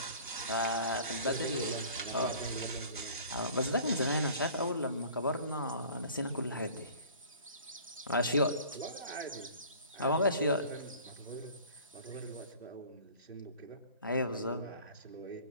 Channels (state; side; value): inverted; both; correlation -0.46